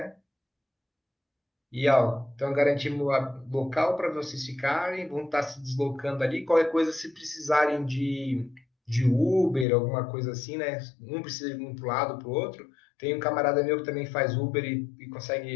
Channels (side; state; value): right; drops out; at 9.7 s